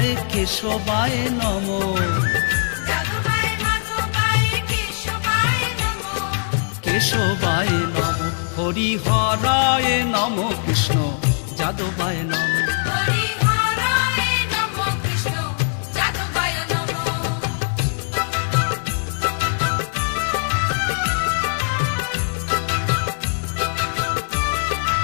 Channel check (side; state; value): right; silent; digital silence